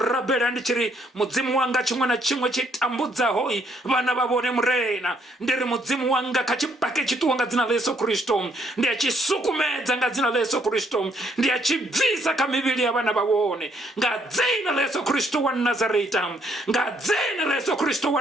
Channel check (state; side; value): normal; both; correlation 0.70